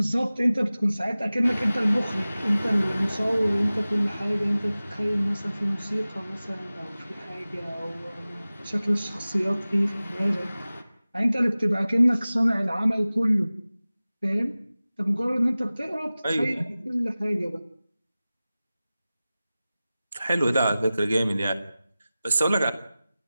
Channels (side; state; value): both; inverted; correlation -0.97